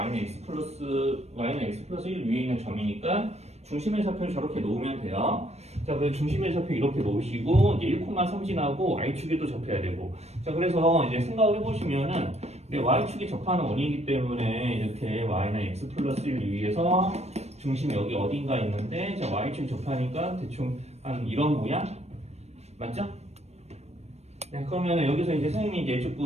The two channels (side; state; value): left; late; 0.31 ms